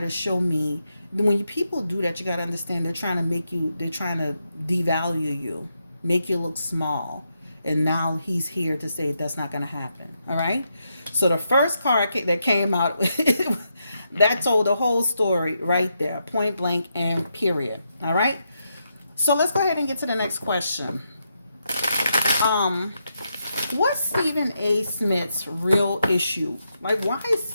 show me." When people do that, you got to understand they're trying to they're trying to devalue you, make you look small. And now he's here to say that's not going to happen. All right. So the first card that came out, that told the whole story right there, point blank and period. All right. So let's go ahead and get to the next question. What's Stephen A. Smith's real issue? Like, why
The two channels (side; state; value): both; inverted; correlation -0.83